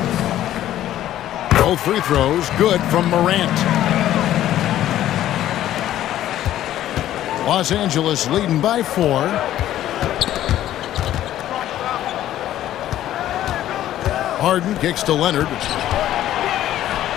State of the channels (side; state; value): right; quieter; 12.7 dB